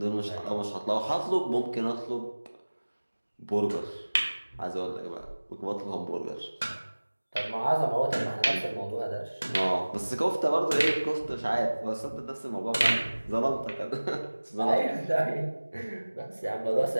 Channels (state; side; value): inverted; both; correlation -1.00